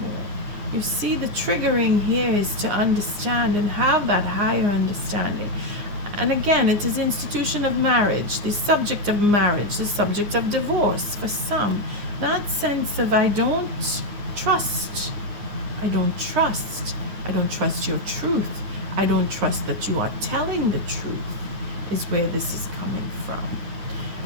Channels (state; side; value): late; left; 9.7 ms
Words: You see, the triggering here is to understand and have that higher understanding. And again, it is institution of marriage, the subject of marriage, the subject of divorce for some. That sense of I don't trust. I don't trust. I don't trust your truth. I don't trust that you are telling the truth, is where this is coming from.